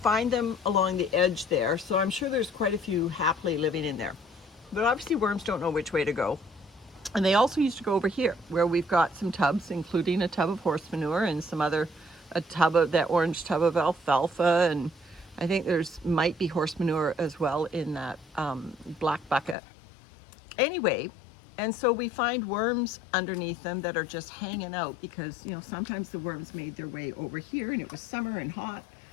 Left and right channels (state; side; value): drops out; right; at 19.6 s